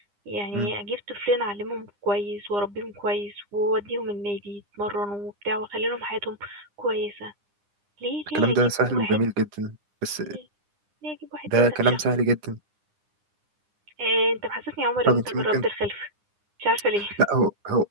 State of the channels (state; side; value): late; left; 9.8 ms